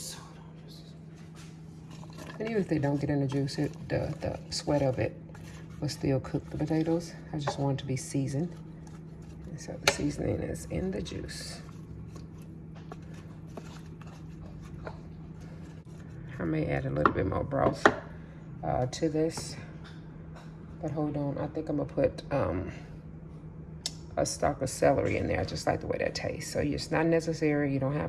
And even if they don't get in the juice, the sweat of it will still cook the potatoes. I just want it to be seasoned. And so the seasoning is in the juice. I may add a little bit more broth to this. But hold on, I think I'm gonna put a stalk of celery in there. I just like the way that tastes. So it's not necessary, you don't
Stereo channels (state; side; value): identical; both; correlation 1.00